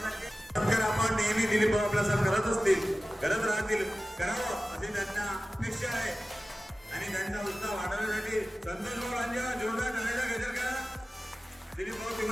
सत्कार आपण नेहमी दिलीप भाऊ आपल्यासाठी करत असतील, करत राहतील, करावं अशी त्यांना अपेक्षा आहे। आणि त्यांचा उत्साह वाढवण्यासाठी संतोष भाऊंच्या जोरदार टाळ्या गजर करा दिलीप भाऊ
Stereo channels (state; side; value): normal; both; correlation 0.96